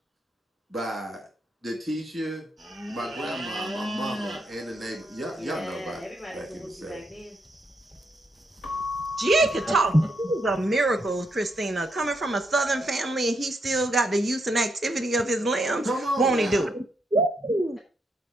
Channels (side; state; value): both; normal; correlation 0.79